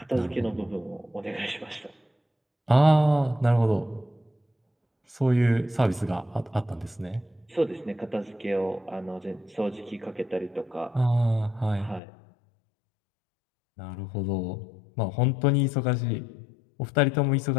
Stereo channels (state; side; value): drops out; right; at 12.0 s